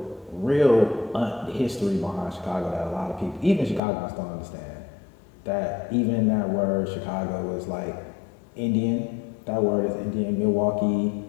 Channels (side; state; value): right; drops out; at 3.8 s